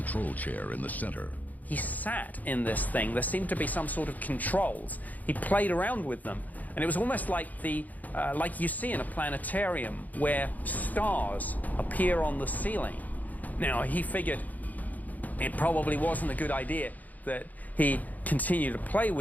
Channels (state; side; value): late; right; 0.080 ms